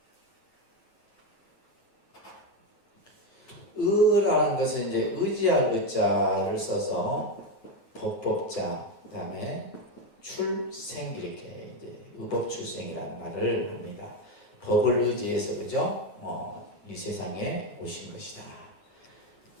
의라는 것은 이제 의지할 의자를 써서 법법자, 그 다음에 출생 이렇게 이제 의법 출생이라는 말을 합니다. 법을 의지해서 그죠? 이 세상에 오신 것이다.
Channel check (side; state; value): right; late; 9.4 ms